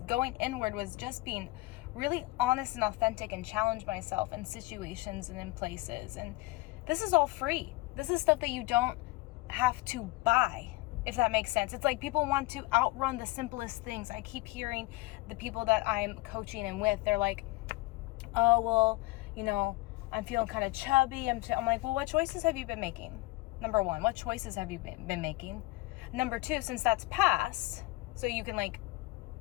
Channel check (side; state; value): right; quieter; 21.0 dB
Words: Going inward was just being really honest and authentic and challenge myself in situations and in places. And this is all free. This is stuff that you don't have to buy, if that makes sense. It's like people want to outrun the simplest things. I keep hearing the people that I'm coaching and with, they're like, oh, well, you know, I'm feeling kind of chubby. I'm like, well, what choices have you been making? Number one, what choices have you been making? Number two, since that's past, so you can like